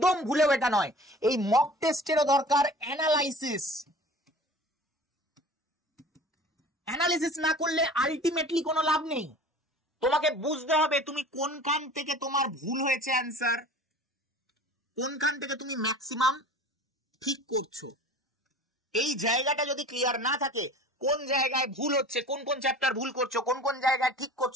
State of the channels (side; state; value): both; normal; correlation 0.42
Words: ভুলেও এটা নয়। এই মক টেস্টেরও দরকার অ্যানালাইসিস। অ্যানালিসিস না করলে আলটিমেটলি কোনো লাভ নেই। তোমাকে বুঝতে হবে তুমি কোনখান থেকে তোমার ভুল হয়েছে অ্যান্সার, কোনখান থেকে তুমি ম্যাক্সিমাম ঠিক করছো। এই জায়গাটা যদি ক্লিয়ার না থাকে, কোন জায়গায় ভুল হচ্ছে, কোন কোন চ্যাপ্টার ভুল করছো, কোন কোন জায়গায় ঠিক